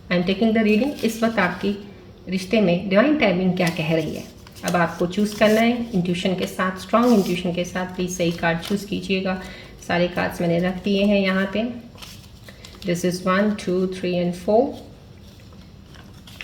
I am taking the reading. इस वक्त आपकी रिश्ते में डिवाइन टाइमिंग क्या कह रही है। अब आपको चूज़ करना है इंट्यूशन के साथ, स्ट्रॉन्ग इंट्यूशन के साथ। प्लीज़ सही कार्ड चूज़ कीजिएगा। सारे कार्ड्स मैंने रख दिए हैं यहाँ पे। This is 1, 2, 3 and 4।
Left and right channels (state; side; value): identical; both; correlation 1.00